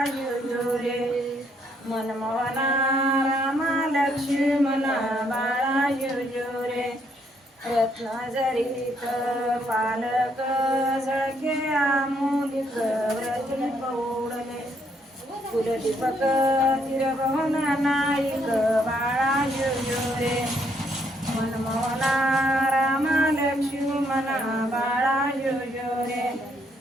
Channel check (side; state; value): both; normal; correlation 0.71